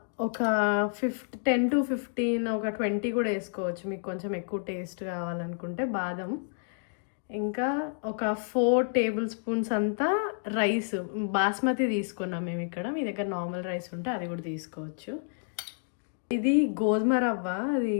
ఒక 10 to 15 ఒక 20 కూడా వేసుకోవచ్చు మీకు కొంచెం ఎక్కువ టేస్ట్ కావాలనుకుంటే బాదం. ఇంకా ఒక 4 టేబుల్ స్పూన్స్ అంతా రైస్, బాస్మతి తీసుకున్నాం మేము ఇక్కడ. మీ దగ్గర నార్మల్ రైస్ ఉంటే అది కూడా తీసుకోవచ్చు. ఇది గోధుమ రవ్వ, అది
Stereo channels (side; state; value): right; silent; digital silence